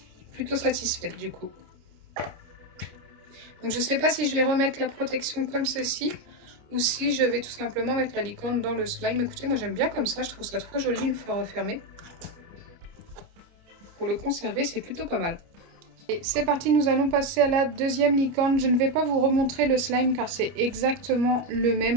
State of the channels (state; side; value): late; left; 29 ms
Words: Plutôt satisfaite du coup. Donc je sais pas si je vais remettre la protection comme ceci ou si je vais tout simplement mettre la licorne dans le slime. Écoutez, moi j'aime bien comme ça, je trouve ça trop joli une fois refermé. Pour le conserver, c'est plutôt pas mal. Et c'est parti, nous allons passer à la deuxième licorne. Je ne vais pas vous remontrer le slime car c'est exactement le